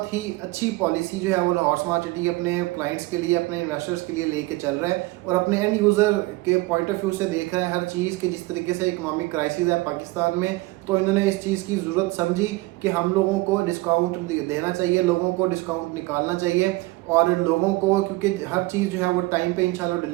ही अच्छी पॉलिसी जो है वो लाहौर स्मार्ट सिटी अपने क्लाइंट्स के लिए, अपने इन्वेस्टर्स के लिए लेके चल रहा है और अपने एंड यूज़र के पॉइंट ऑफ व्यू से देख रहा है हर चीज़ के। जिस तरीके से इकोनॉमिक क्राइसिस है पाकिस्तान में, तो इन्होंने इस चीज़ की ज़रूरत समझी कि हम लोगों को डिस्काउंट देना चाहिए, लोगों को डिस्काउंट निकालना चाहिए और लोगों को, क्योंकि हर चीज़ जो है वो टाइम पे इंशाल्लाह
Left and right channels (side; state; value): left; quieter; 21.3 dB